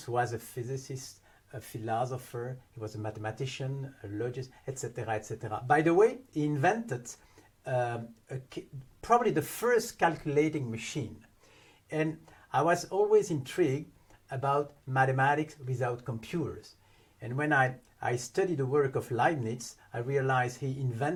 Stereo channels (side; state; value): both; identical; correlation 1.00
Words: was a physicist, a philosopher, he was a mathematician, a logist, etc., etc. By the way, he invented probably the first calculating machine. And I was always intrigued about mathematics without computers. And when I studied the work of Leibniz, I realized he